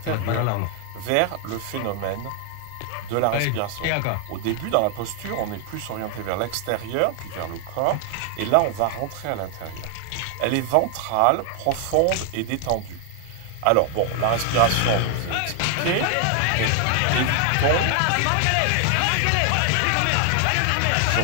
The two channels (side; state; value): both; different; correlation 0.00